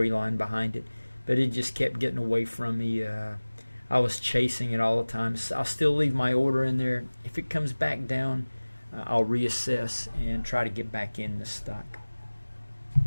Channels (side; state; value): both; inverted; correlation -1.00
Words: behind it, but it just kept getting away from me. I was chasing it all the time. So I'll still leave my order in there. If it comes back down, I'll reassess and try to get back in the stock.